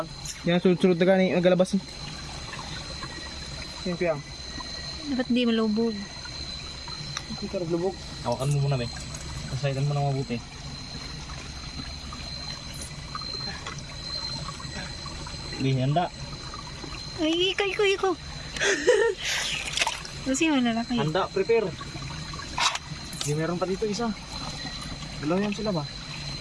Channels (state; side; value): identical; both; correlation 1.00